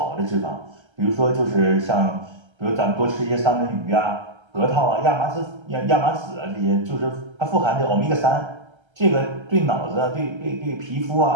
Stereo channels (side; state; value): left; late; 1.3 ms